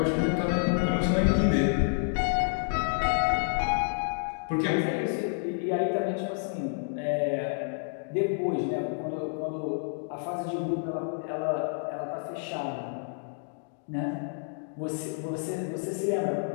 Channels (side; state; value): right; silent; digital silence